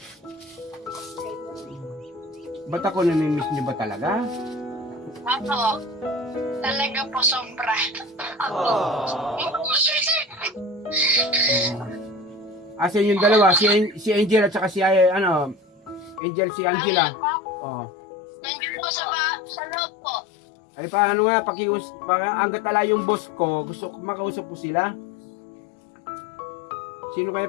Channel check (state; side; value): drops out; right; at 16.2 s